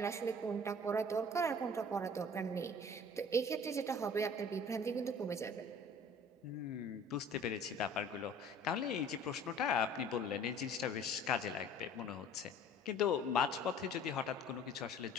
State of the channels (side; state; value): both; normal; correlation 0.48